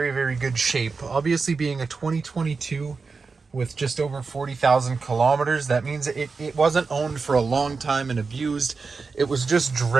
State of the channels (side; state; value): left; quieter; 4.6 dB